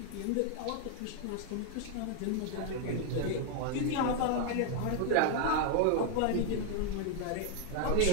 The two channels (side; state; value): both; different; correlation 0.00